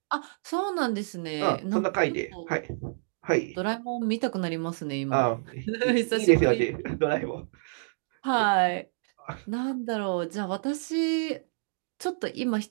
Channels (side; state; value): left; silent; digital silence